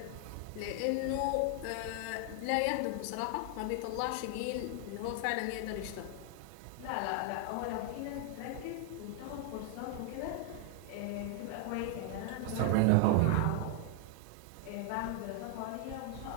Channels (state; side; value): different; both; correlation 0.00